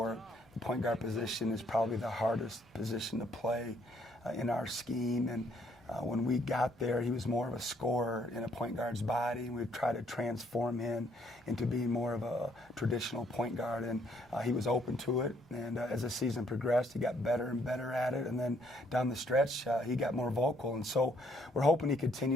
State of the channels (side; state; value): both; normal; correlation 0.68